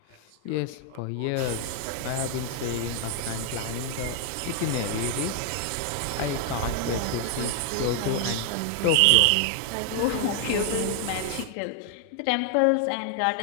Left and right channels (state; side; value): different; both; correlation 0.00